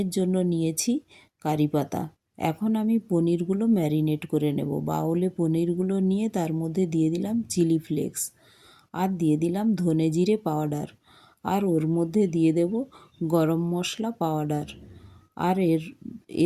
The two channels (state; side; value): identical; both; correlation 1.00